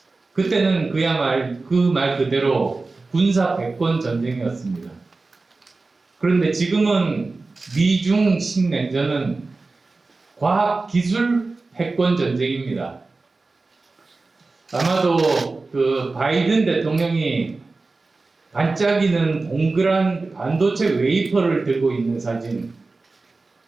그때는 그 말 그대로 군사 패권 전쟁이었습니다. 그런데 지금은 미중 신냉전은 과학 기술 패권 전쟁입니다. 아마도 그 바이든 대통령이 반짝이는 동그란 반도체 웨이퍼를 들고 있는 사진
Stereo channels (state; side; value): quieter; left; 3.6 dB